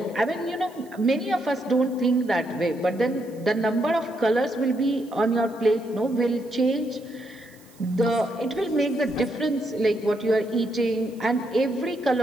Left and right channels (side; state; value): right; noise; hiss, 27 dB below the sound